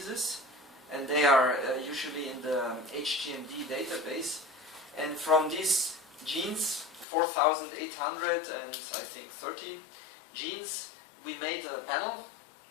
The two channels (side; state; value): right; drops out; at 7.1 s